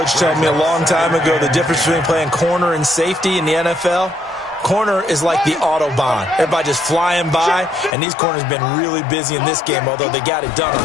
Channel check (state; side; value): drops out; right; at 7.9 s